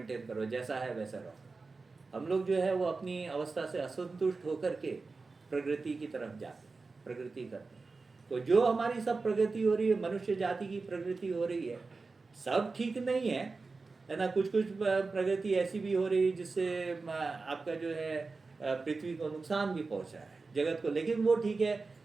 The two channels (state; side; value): quieter; left; 4.0 dB